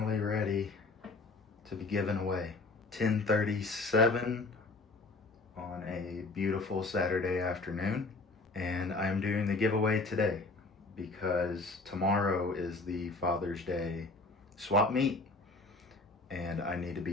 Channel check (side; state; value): right; quieter; 3.5 dB